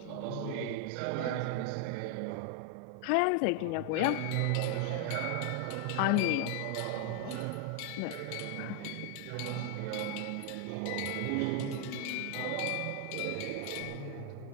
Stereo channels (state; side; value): different; both; correlation 0.00